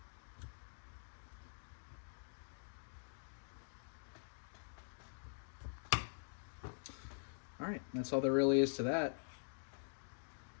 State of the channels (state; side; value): silent; right; digital silence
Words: All right, that's all there really is to that.